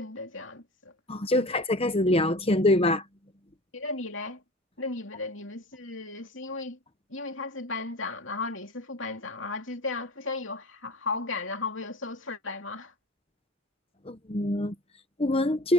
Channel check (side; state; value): both; normal; correlation 0.37